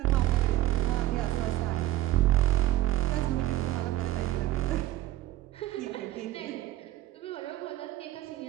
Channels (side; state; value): left; quieter; 14.7 dB